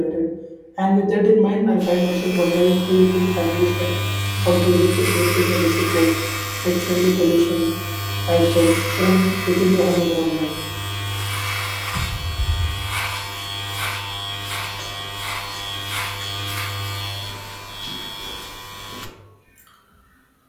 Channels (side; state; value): both; identical; correlation 1.00